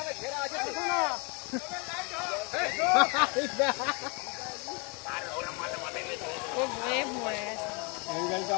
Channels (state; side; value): quieter; right; 32.2 dB